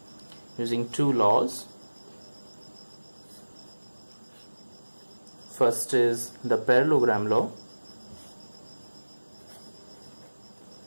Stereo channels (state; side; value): inverted; both; correlation -1.00